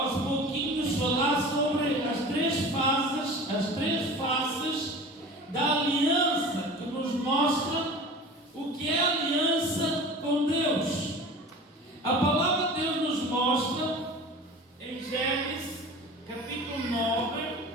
pouquinhos falar sobre as três faces da aliança, que nos mostra o que é aliança com Deus. A palavra de Deus nos mostra em Gênesis capítulo 9.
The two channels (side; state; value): both; normal; correlation 0.38